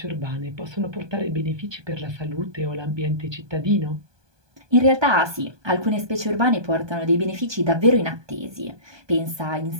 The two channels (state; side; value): late; left; 1.2 ms